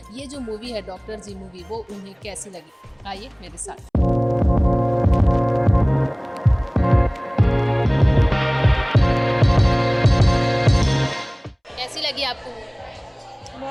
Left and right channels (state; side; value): identical; both; correlation 1.00